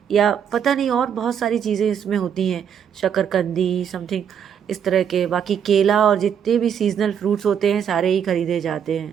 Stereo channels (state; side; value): quieter; left; 8.1 dB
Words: या पता नहीं और बहुत सारी चीज़ें इसमें होती हैं, शकरकंदी समथिंग इस तरह के। बाकी केला और जितने भी सीजनल फ्रूट्स होते हैं सारे ही खरीदे जाते